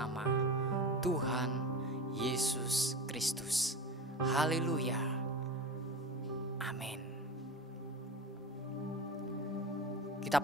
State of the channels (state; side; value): normal; both; correlation 0.28